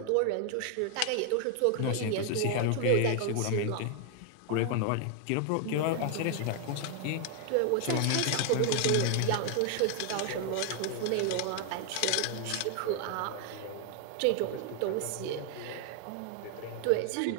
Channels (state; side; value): different; both; correlation 0.00